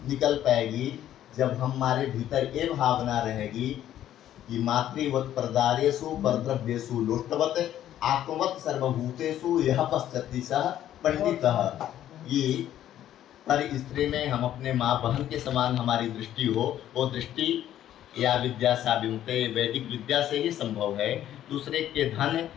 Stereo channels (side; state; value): right; quieter; 11.8 dB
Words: निकल पाएगी जब हमारे भीतर ये भावना रहेगी कि मातृवत परदारेषु परद्रव्येषु लोष्टवत आत्मवत सर्वभूतेषु यह पश्चति सह पंडितः। ये पर स्त्री में हम अपने माँ बहन के समान हमारी दृष्टि हो, वो दृष्टि या विद्या सा विमुक्ते वैदिक विद्या से ही संभव है। दूसरे के धन